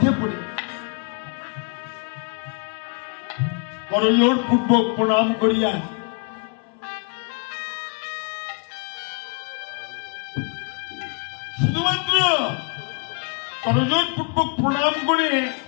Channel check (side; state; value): right; quieter; 37.0 dB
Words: পড়ে। করজোড় পূর্বক প্রণাম করিয়া শুধুমাত্র করজোড় পূর্বক প্রণাম করে